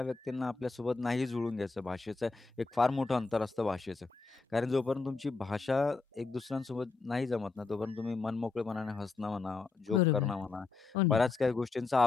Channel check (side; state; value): right; quieter; 4.1 dB